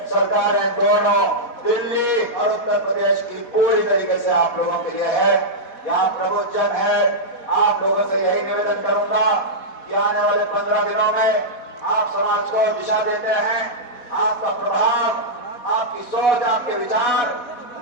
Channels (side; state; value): right; late; 4.1 ms